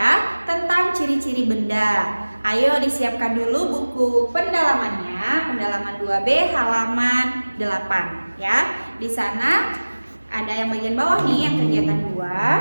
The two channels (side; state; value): both; inverted; correlation -1.00